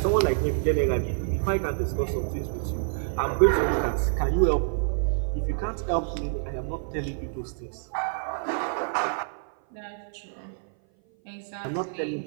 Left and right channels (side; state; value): left; silent; 56 dB below the other